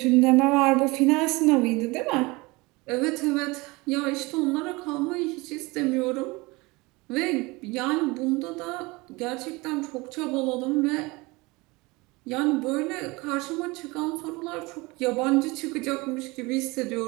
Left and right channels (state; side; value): quieter; left; 24.0 dB